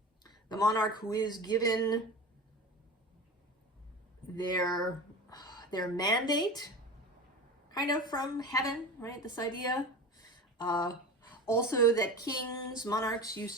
The monarch who is given their mandate kind of from heaven, right? This idea. Also that kings, monarchs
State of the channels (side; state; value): both; normal; correlation 0.31